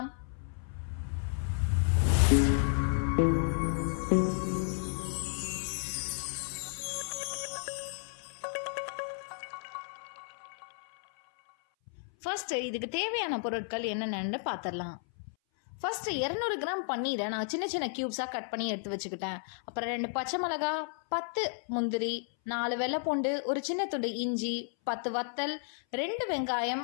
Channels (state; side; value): silent; right; 56 dB below the other